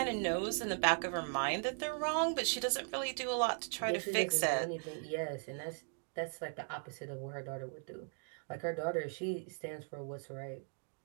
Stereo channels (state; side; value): silent; left; 52 dB below the other